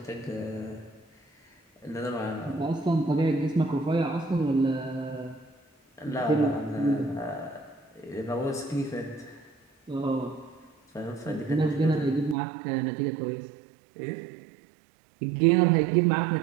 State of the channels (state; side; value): drops out; left; at 12.4 s